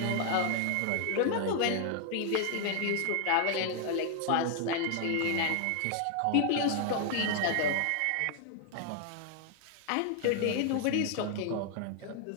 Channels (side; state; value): both; different; correlation 0.00